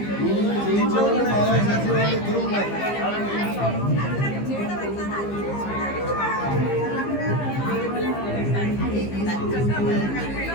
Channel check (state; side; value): late; right; 15 ms